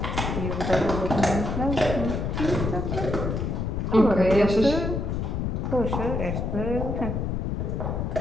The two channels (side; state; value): left; noise; rumble, 1 dB below the sound